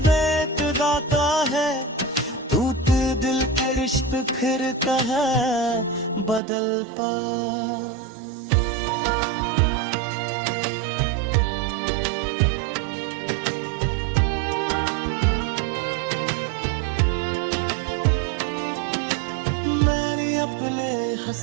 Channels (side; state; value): left; drops out; at 6.4 s